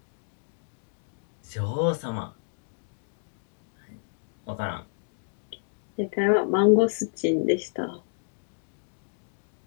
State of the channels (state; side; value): silent; right; digital silence